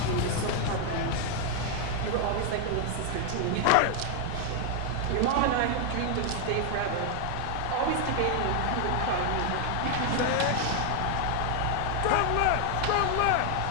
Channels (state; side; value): different; both; correlation 0.00